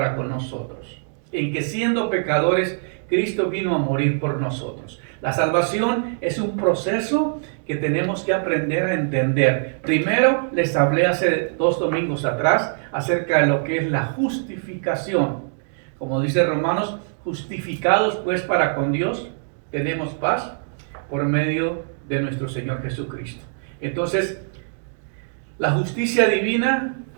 con nosotros, en que siendo pecadores, Cristo vino a morir por nosotros. La salvación es un proceso que tenemos que aprender a entender. Primero, les hablé hace 2 domingos atrás acerca de lo que es la justificación. Como dice Romanos, justificados pues para con Dios, tenemos paz por medio de nuestro Señor Jesucristo. Entonces, la justicia divina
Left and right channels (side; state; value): left; silent; digital silence